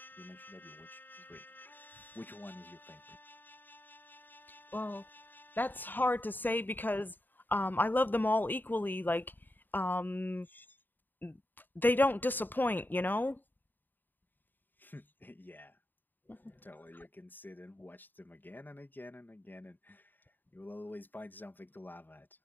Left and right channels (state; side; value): late; right; 0.091 ms